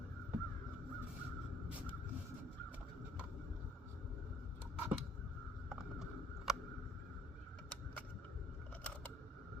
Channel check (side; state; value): both; normal; correlation 0.61